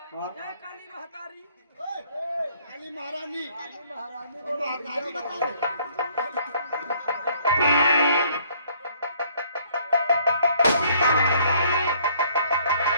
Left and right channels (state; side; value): inverted; both; correlation -0.62